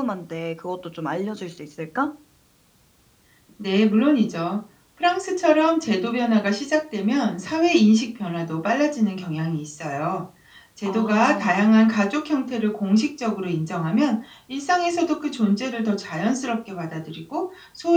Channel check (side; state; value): both; identical; correlation 1.00